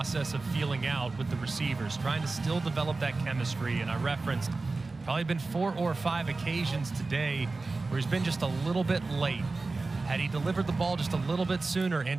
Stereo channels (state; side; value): quieter; left; 3.6 dB